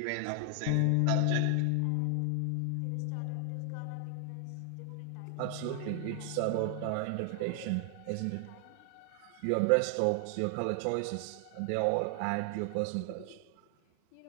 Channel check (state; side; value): different; both; correlation 0.00